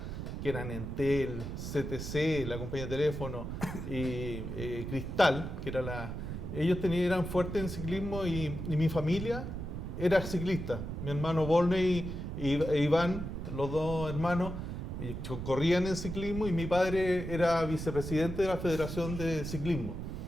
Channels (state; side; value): noise; right; rumble, 6 dB below the sound